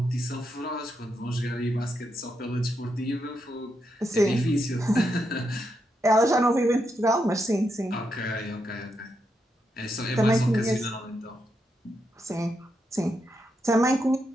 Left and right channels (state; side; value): normal; both; correlation 0.82